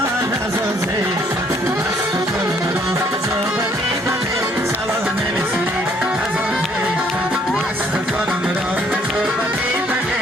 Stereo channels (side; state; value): both; normal; correlation 0.64